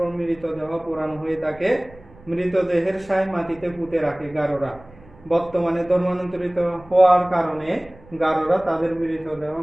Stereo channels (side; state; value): right; noise; rumble, 24 dB below the sound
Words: মৃতদেহ পোড়ানো হয়ে থাকে। মৃতদেহের সায় মাটিতে পুঁতে রাখে গারোরা। বর্তমানে ধর্মান্তরিত হওয়ার কারণে গারোরা তাদের